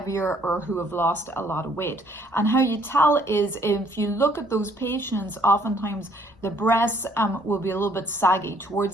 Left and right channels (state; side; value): normal; both; correlation 0.64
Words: or who have lost a lot of weight. And how you tell is, if you look at those patients, oftentimes the breasts will be a little bit saggy